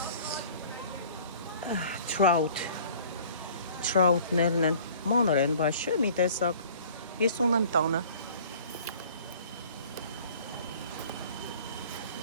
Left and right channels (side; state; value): both; inverted; correlation -0.50